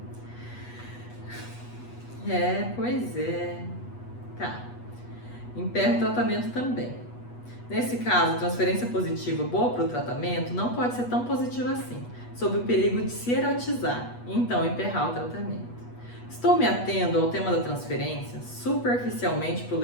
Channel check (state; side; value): late; right; 8.2 ms